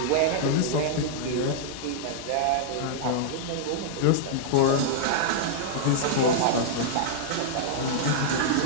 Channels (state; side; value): different; both; correlation -0.02